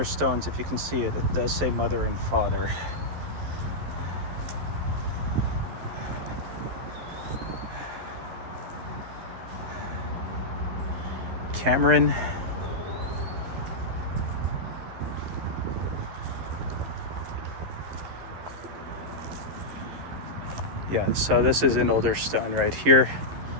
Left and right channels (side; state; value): left; late; 11 ms